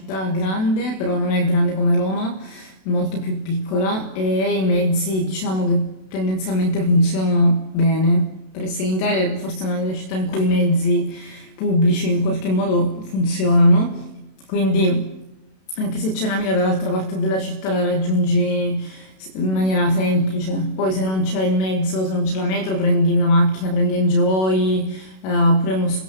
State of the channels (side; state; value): right; late; 32 ms